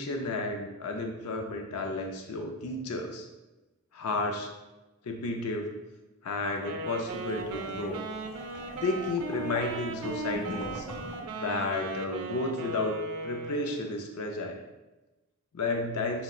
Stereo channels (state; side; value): normal; both; correlation 0.05